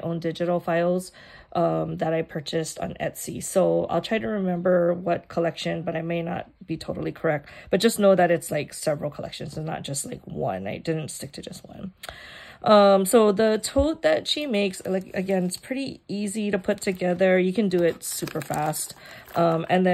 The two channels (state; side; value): identical; both; correlation 1.00